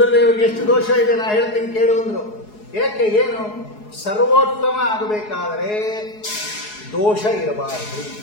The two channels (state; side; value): late; right; 4.7 ms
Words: ಎಷ್ಟು ದೋಷ ಇದೆ, ನಾ ಹೇಳ್ತೀನಿ ಕೇಳು ಅಂದ್ರು. ಏಕೆ, ಏನು? ಸರ್ವೋತ್ತಮ ಆಗಬೇಕಾದರೆ ದೋಷ ಇರಬಾರದು.